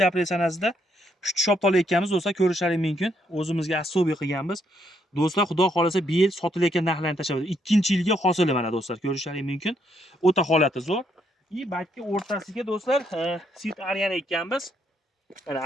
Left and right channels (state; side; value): normal; both; correlation 0.74